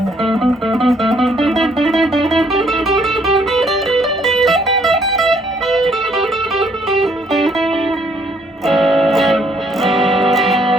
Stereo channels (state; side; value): normal; both; correlation 0.66